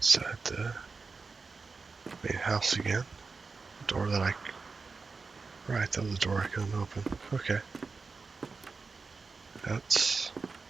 Inside the main house again. Door that I... Right, that was a door I couldn't open. Okay. That's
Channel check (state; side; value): quieter; left; 4.4 dB